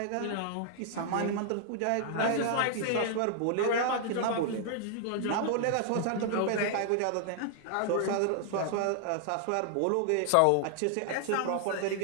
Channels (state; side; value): different; both; correlation -0.01